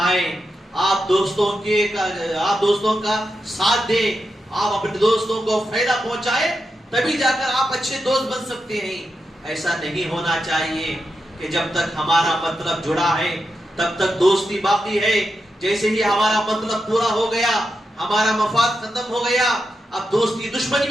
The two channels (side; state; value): both; normal; correlation 0.87